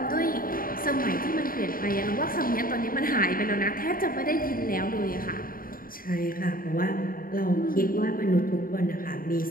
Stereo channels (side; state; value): right; late; 0.41 ms